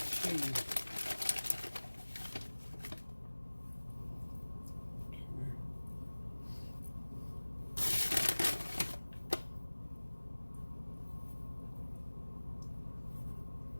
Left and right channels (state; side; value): inverted; both; correlation -1.00